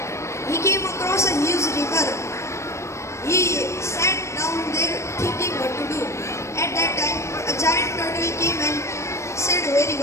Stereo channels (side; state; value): right; late; 0.14 ms